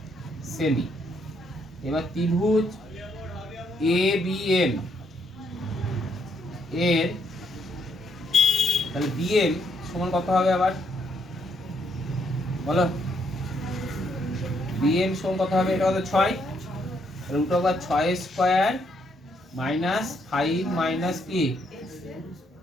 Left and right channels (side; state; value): both; normal; correlation 0.73